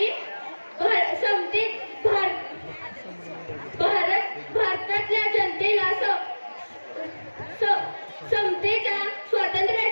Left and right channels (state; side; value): inverted; both; correlation -1.00